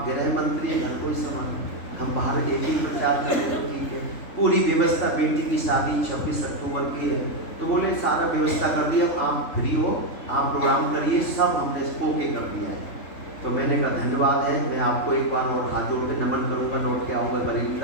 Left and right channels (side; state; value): right; late; 3.5 ms